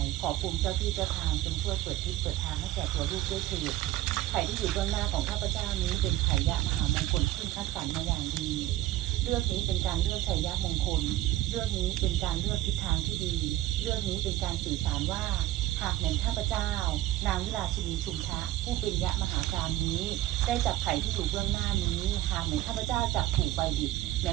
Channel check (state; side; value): quieter; left; 15.2 dB